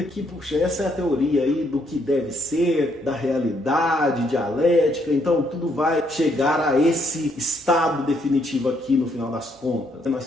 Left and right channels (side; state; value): both; normal; correlation 0.72